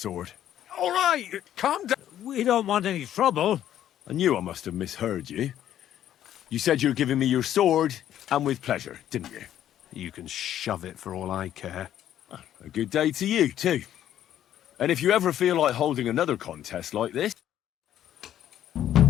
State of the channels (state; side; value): quieter; right; 11.3 dB